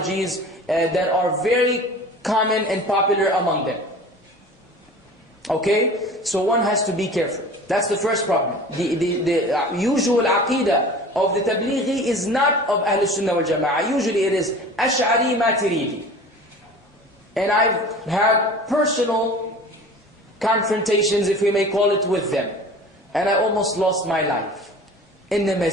that are very common and popular among them. Okay? So one has to be careful. That's the first problem. The usual aqidah of the Tableeghi is not of Ahl Sunnah wal Jama'ah. Usually it is Ash'ari Maturidi. And I've had personal confrontations, if we may call it, with them. And I almost lost my life in the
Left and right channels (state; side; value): normal; both; correlation 0.40